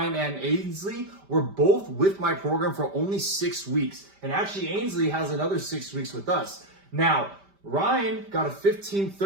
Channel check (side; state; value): left; late; 5.1 ms